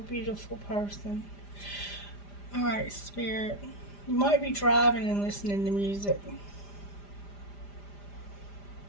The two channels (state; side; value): late; right; 5.0 ms